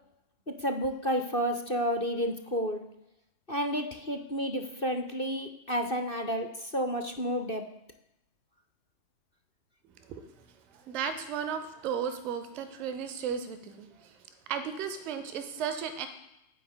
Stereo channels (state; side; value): late; right; 2.6 ms